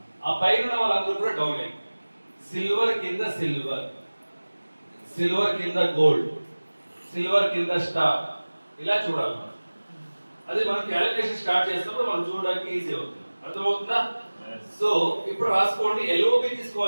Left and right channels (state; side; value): inverted; both; correlation -1.00